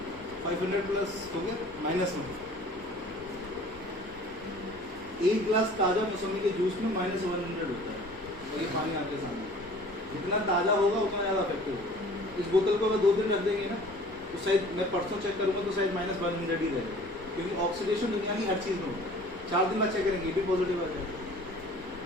500 प्लस हो गया माइनस में। एक गिलास ताजा मौसमी के जूस में -100 होता है, और ये पानी आपके सामने। जितना ताजा होगा उतना ज्यादा इफेक्टिव होगा। इस बोतल को अगर 2 दिन रख देंगे ना तो शायद, मैं परसों चेक करूंगा तो शायद -100 ही रहेगा, क्योंकि ऑक्सीडेशन दुनिया की हर चीज में होता है। 4 दिन बाद चेक करेंगे ये भी पॉजिटिव आ जाएगा।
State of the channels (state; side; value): normal; both; correlation 0.48